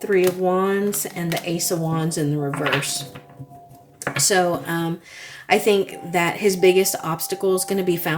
Three of Wands and the Ace of Wands in the reverse. So I think that his biggest obstacle is going to be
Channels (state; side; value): identical; both; correlation 1.00